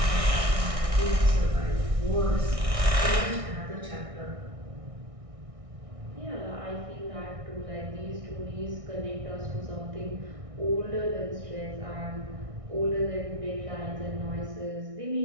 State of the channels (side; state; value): left; late; 1.6 ms